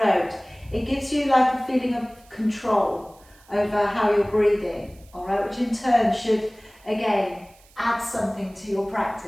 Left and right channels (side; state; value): right; noise; hiss, 28 dB below the sound